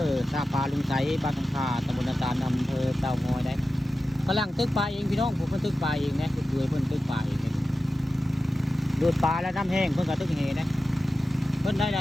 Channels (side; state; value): both; normal; correlation 0.93